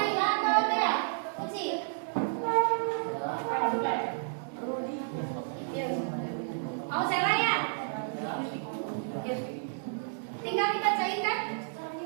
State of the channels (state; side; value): silent; left; digital silence